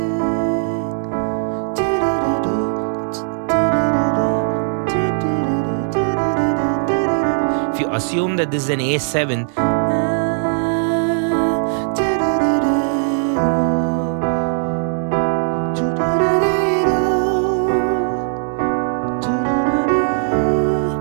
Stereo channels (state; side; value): silent; left; 67 dB below the other